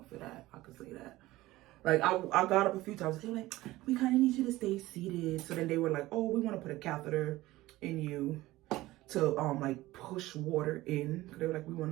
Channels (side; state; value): left; quieter; 17.7 dB